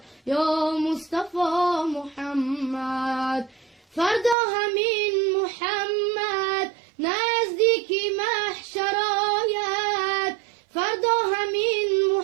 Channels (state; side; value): drops out; left; at 4.4 s